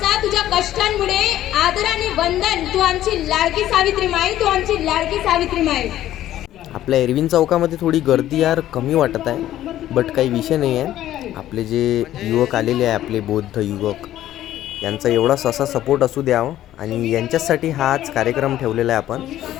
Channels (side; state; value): right; quieter; 13.0 dB